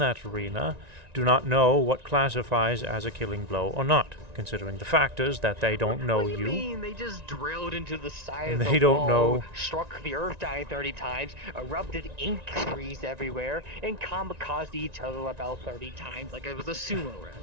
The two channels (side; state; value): left; late; 1.9 ms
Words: arena do not know what classifies as a killing blow or not, considering the factors that they don't know What do you you. mean? They just drilled into the side And of the they don't wall, know. struck the earth dying 30 times, erupted ink trees everywhere, and kamikazed each other about 30 times like it was a sumo